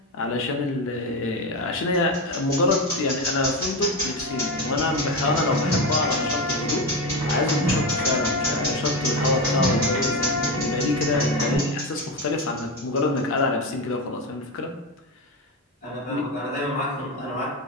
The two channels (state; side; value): normal; both; correlation 0.16